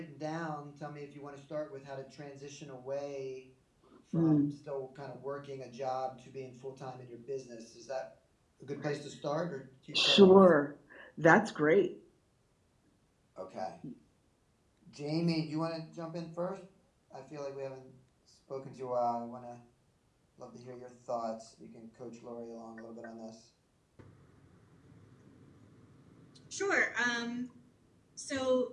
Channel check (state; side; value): identical; both; correlation 1.00